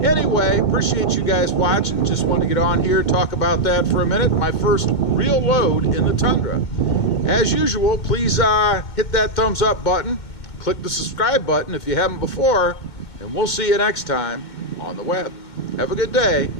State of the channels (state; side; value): late; right; 2.2 ms